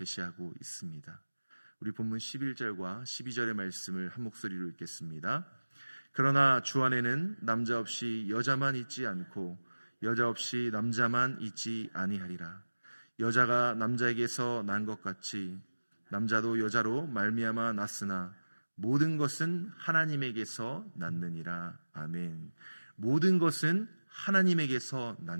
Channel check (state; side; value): inverted; both; correlation -1.00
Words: 있습니다. 우리 본문 11절과 12절의 말씀을 한 목소리로 읽겠습니다. 그러나 주 안에는 남자 없이 여자만 있지 않고 여자 없이 남자만 있지 아니하리라. 여자가 남자에게서 난 것 같이 남자도 여자로 말미암아 났으나 모든 것은 하나님에게서 났느니라. 아멘. 모든 것은 하나님에게서